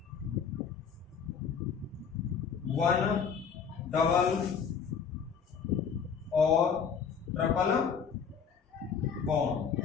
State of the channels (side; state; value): right; quieter; 6.6 dB